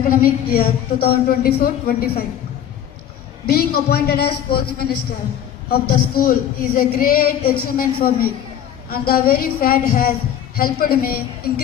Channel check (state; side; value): quieter; right; 10.1 dB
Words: year 2024-25. Being appointed as Sports Minister of the school is a great achievement for me, and the very fact has helped me